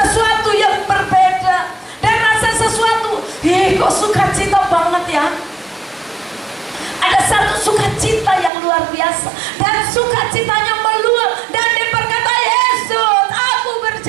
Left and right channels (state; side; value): drops out; left; at 8.5 s